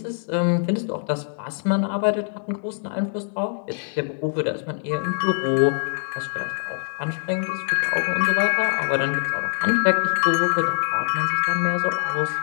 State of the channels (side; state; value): right; silent; 63 dB below the other